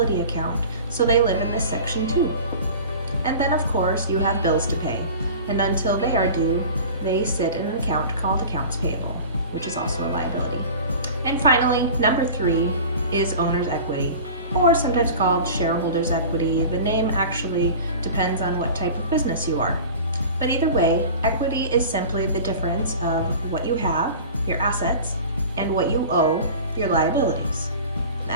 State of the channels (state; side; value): inverted; both; correlation -0.38